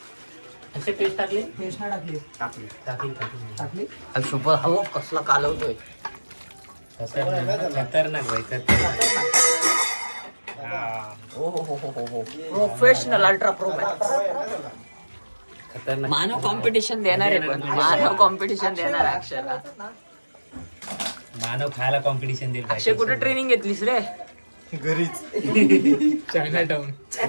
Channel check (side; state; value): both; inverted; correlation -1.00